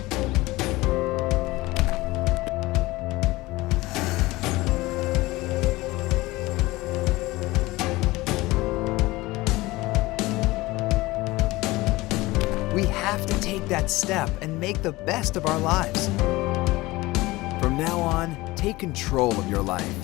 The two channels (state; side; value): quieter; right; 20.2 dB